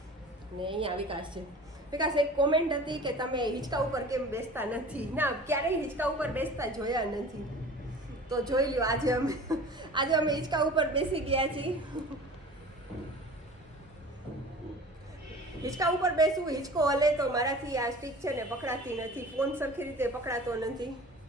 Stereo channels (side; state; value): both; normal; correlation 0.41